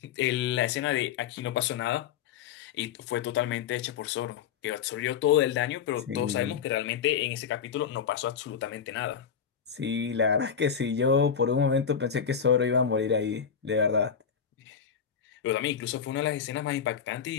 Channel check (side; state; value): right; quieter; 7.4 dB